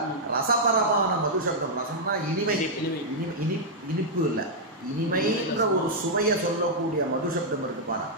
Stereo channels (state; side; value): normal; both; correlation -0.05